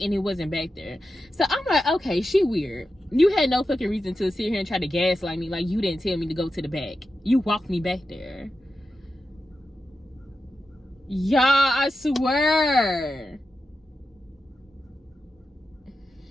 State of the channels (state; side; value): normal; both; correlation 0.90